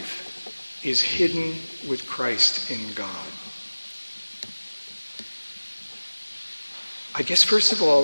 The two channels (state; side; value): inverted; both; correlation -1.00